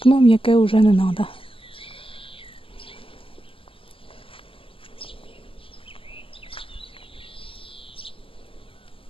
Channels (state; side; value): late; right; 0.26 ms